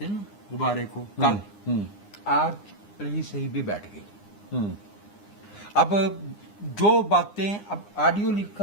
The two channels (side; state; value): right; late; 9.8 ms